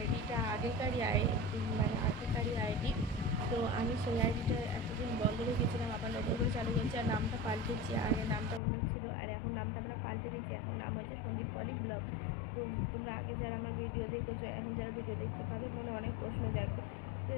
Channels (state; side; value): drops out; right; at 8.6 s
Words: আগেকারই আইডি। তো আমি সেই আইডিটা এতদিন বন্ধ রেখেছিলাম, আবার নতুন করে চালু করছি। আর নামটা পাল্টেছি, আগে নামটা অন্য ছিল আর এখন নামটা আমরা পাল্টে দিচ্ছি। এখন নাম হচ্ছে সন্দীপ পলি ব্লগ। তো তোমরা আগে যারা আমার ভিডিও দেখেছো, এখন যারা ভিডিও দেখছো, তাদের মনে অনেক প্রশ্ন জাগবে। তো